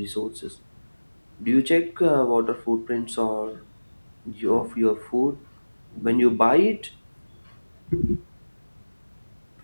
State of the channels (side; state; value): both; inverted; correlation -1.00